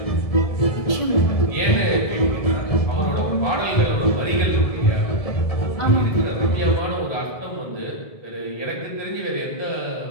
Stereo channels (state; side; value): late; right; 1.7 ms